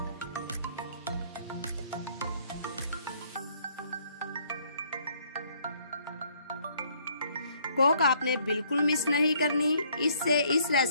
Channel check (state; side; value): inverted; both; correlation -0.65